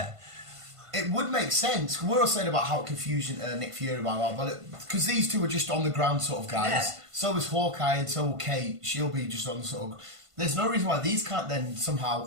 it would make sense. We're all saying about how confusing Nick Fury, because these two are just on the ground sort of guys. Yeah. So is Hawkeye and so will Kate. She'll be just on the sort of. There's no reason why these can't then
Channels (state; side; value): late; left; 1.5 ms